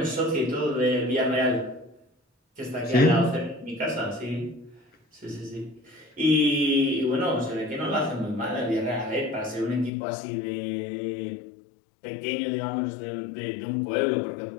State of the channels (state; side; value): drops out; right; at 9.9 s